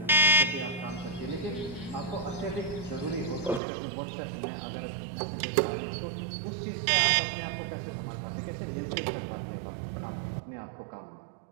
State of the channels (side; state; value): left; drops out; at 3.6 s